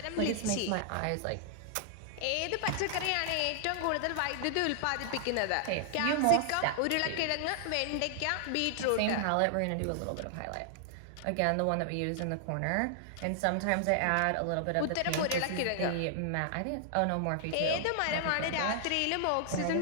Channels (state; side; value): different; both; correlation -0.01